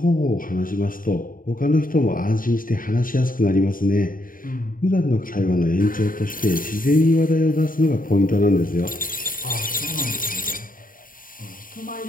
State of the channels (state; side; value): late; right; 0.40 ms